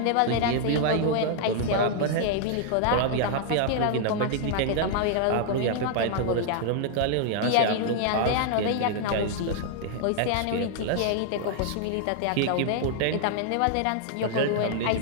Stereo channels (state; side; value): different; both; correlation -0.01